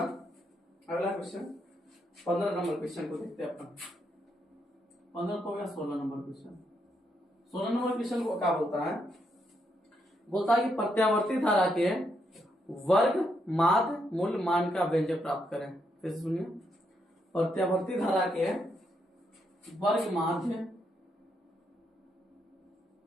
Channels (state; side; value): normal; both; correlation 0.78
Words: अगला क्वेश्चन 15 नंबर क्वेश्चन को देखते हैं अपन। 15 तो हो गया 16 नंबर क्वेश्चन। 16 नंबर क्वेश्चन को क्या बोलता है कि प्रत्यावर्ती धारा के वर्ग माध्य मूल मान का व्यंजक प्राप्त करें। फिर सुनिए, प्रत्यावर्ती धारा के वर्ग माध्य